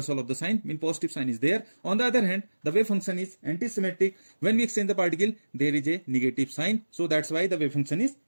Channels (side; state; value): both; inverted; correlation -1.00